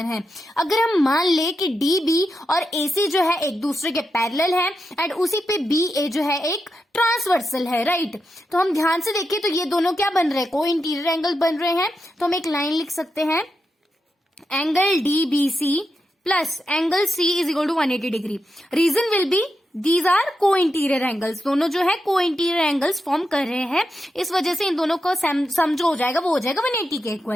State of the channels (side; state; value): both; normal; correlation 0.87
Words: है. अगर हम मान ले कि डीबी और एसी जो है एक दूसरे के पैरेलल है एंड उसी पे बीए जो है एक ट्रांसवर्सल है, राइट. तो हम ध्यान से देखें तो ये दोनों क्या बन रहे हैं? को इंटीरियर एंगल बन रहे हैं. तो हम एक लाइन लिख सकते हैं, angle DBC plus angle C is equal to 180 degree. Reason will be these are co interior angles. दोनों जो है को इंटीरियर एंगल्स फॉर्म कर रहे हैं, इस वजह से इन दोनों का सम जो हो जाएगा वो हो जाएगा 180 के